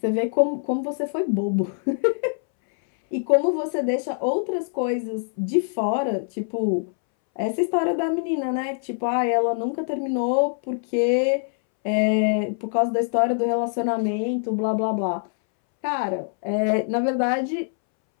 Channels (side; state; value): right; silent; 63 dB below the other